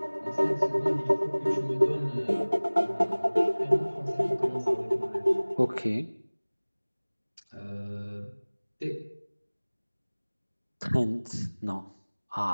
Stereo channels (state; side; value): inverted; both; correlation -1.00